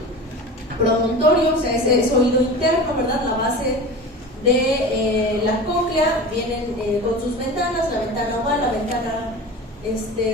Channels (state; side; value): normal; both; correlation 0.33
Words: promontorio, o sea, es oído interno, ¿verdad? La base de la cóclea, vienen con sus ventanas, la ventana oval, la ventana